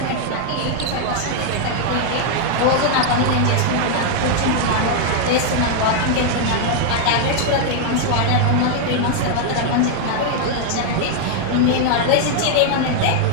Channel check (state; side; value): different; both; correlation 0.00